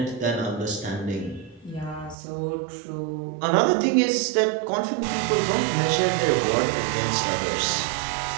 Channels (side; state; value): left; drops out; at 2.1 s